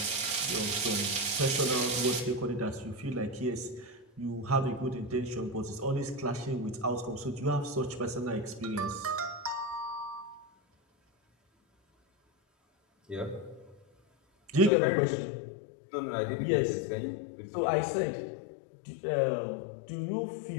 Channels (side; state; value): right; drops out; at 14.7 s